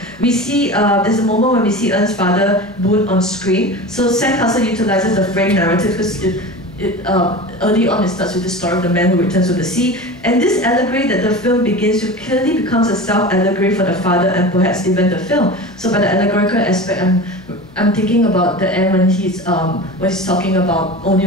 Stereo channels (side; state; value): left; noise; hum, 25 dB below the sound